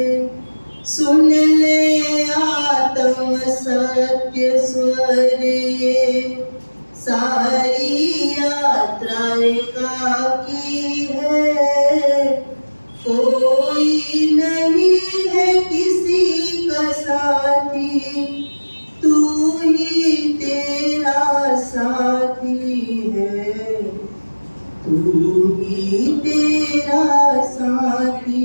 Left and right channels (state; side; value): inverted; both; correlation -1.00